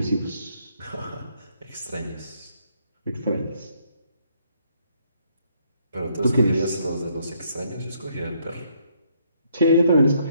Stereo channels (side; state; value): both; inverted; correlation -0.70